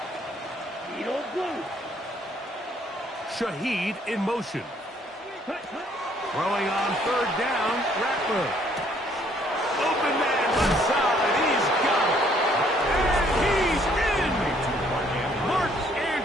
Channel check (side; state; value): both; normal; correlation 0.64